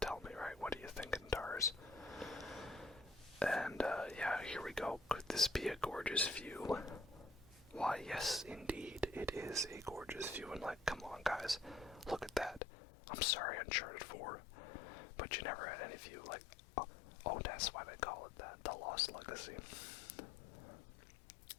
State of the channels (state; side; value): drops out; right; at 12.6 s